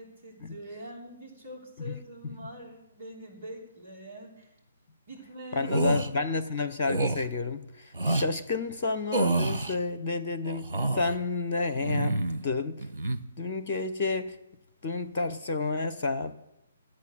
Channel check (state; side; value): inverted; both; correlation -0.69